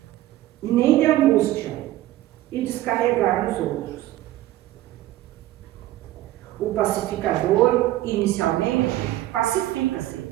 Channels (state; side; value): quieter; left; 15.3 dB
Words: e nem de angústia e descarregar nos outros. O pacificador, inicialmente, pacifica-se.